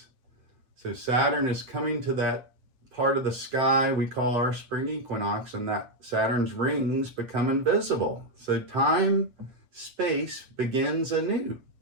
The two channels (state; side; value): late; left; 7.8 ms